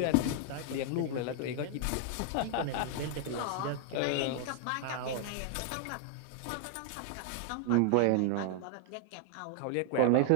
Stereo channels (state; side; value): different; both; correlation 0.00